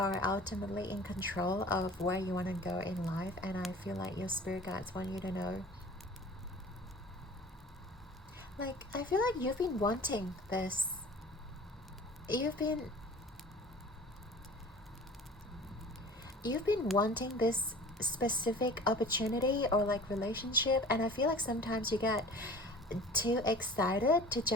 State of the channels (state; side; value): normal; both; correlation 0.43